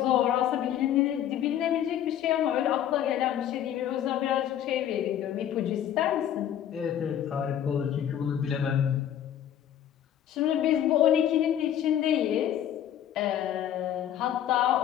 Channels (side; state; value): right; quieter; 10.5 dB